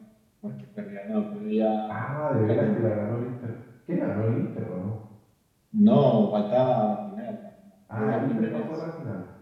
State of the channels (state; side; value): identical; both; correlation 1.00